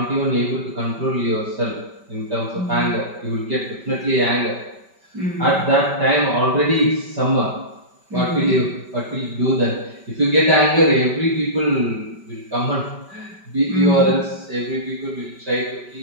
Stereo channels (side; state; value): left; late; 5.2 ms